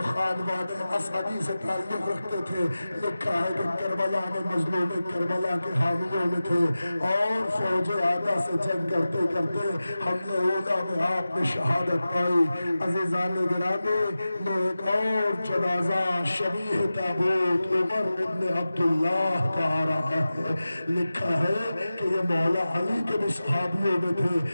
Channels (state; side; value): inverted; both; correlation -0.95